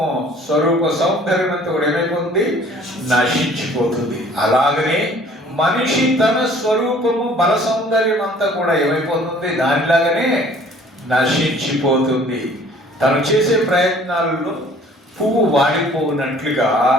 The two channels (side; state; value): both; normal; correlation 0.53